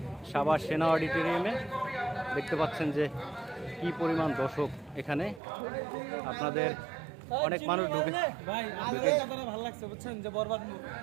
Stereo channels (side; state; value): left; drops out; at 5.4 s